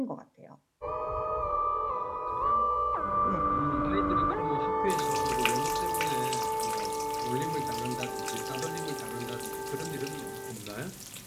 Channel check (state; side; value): identical; both; correlation 1.00